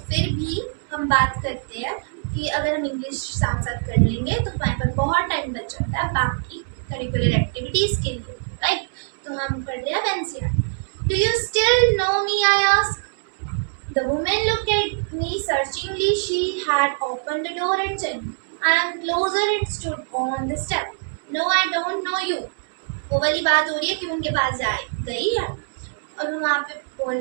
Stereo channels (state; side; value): silent; left; digital silence